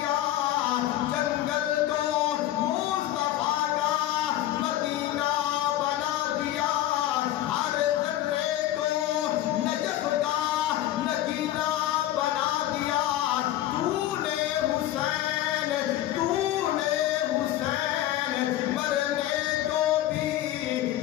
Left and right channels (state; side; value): quieter; right; 13.7 dB